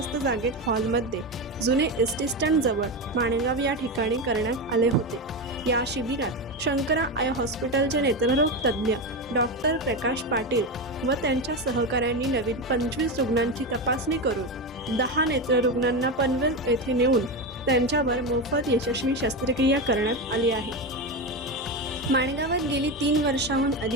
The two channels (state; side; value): normal; both; correlation 0.16